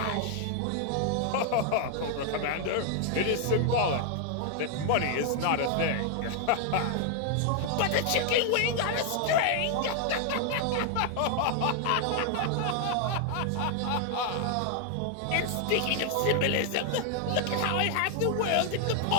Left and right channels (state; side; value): different; both; correlation 0.00